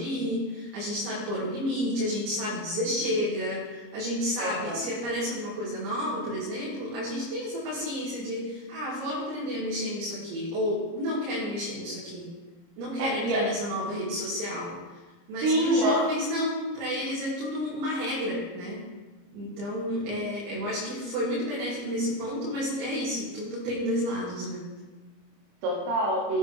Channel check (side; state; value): left; late; 29 ms